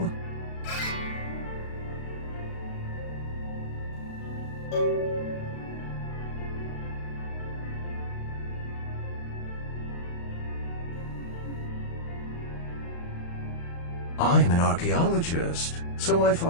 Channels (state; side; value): late; right; 35 ms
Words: I'm an archaeologist, so I